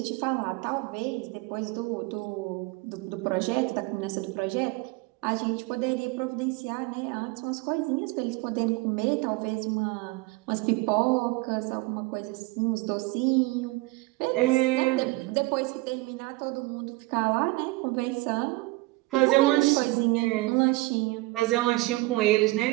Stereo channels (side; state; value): left; quieter; 22.1 dB